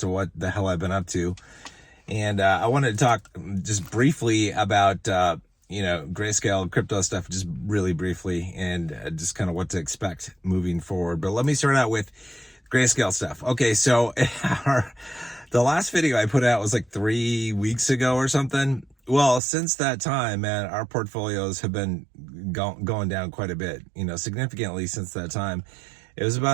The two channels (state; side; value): drops out; left; at 19.4 s